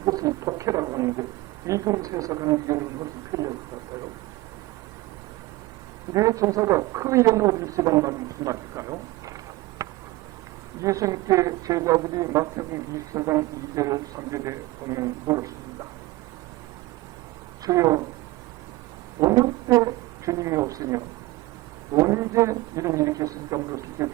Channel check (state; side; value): quieter; left; 19.5 dB